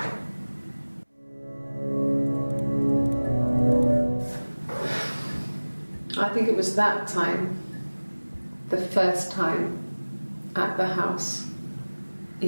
I think it was that time, the first time at the house,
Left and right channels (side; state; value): both; inverted; correlation -1.00